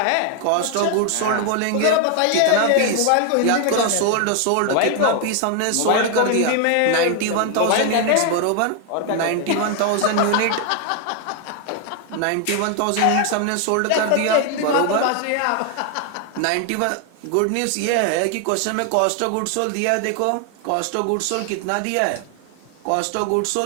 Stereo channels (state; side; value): different; both; correlation 0.00